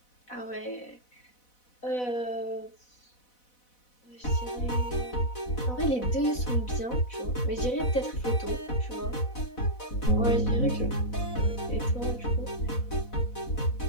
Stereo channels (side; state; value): right; late; 4.1 ms